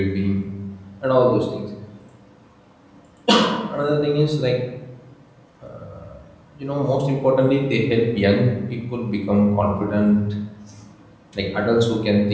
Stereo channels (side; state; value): both; identical; correlation 1.00